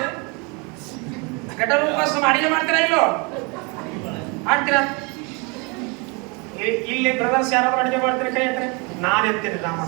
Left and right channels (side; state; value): left; quieter; 30.5 dB